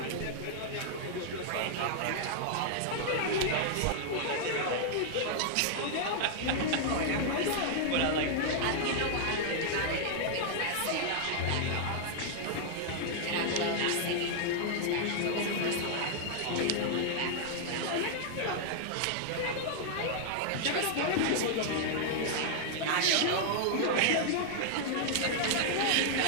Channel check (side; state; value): both; different; correlation -0.01